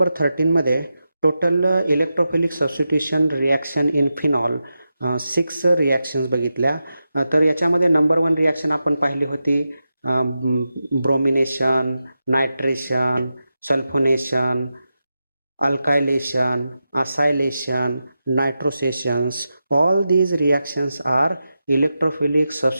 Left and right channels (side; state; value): both; inverted; correlation -0.90